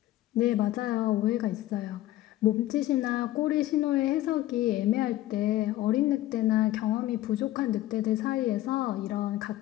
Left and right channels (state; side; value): quieter; right; 15.0 dB